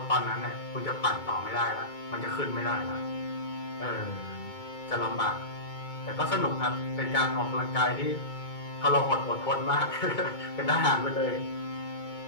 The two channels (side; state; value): right; late; 2.2 ms